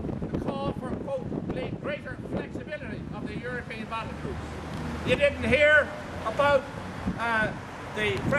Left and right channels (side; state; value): both; identical; correlation 1.00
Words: the call for, quote, greater flexibility of the European battle groups. You didn't hear about the